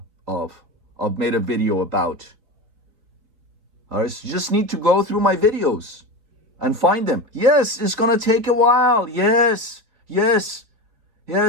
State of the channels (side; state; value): left; late; 4.0 ms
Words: of. I've made a video about. All right, so you just need to go through my videos and find them. Yes, it's gonna take a while. Yes,